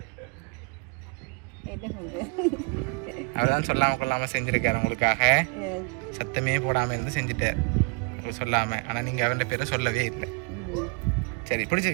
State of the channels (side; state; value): left; quieter; 31.0 dB